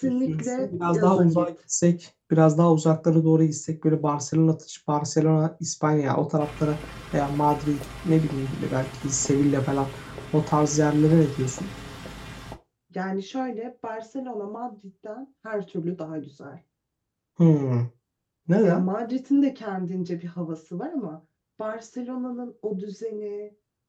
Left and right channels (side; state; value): both; identical; correlation 1.00